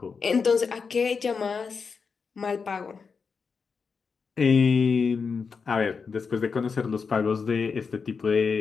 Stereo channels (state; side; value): quieter; right; 5.4 dB